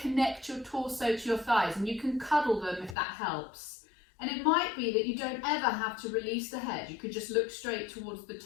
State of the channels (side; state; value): right; drops out; at 3.0 s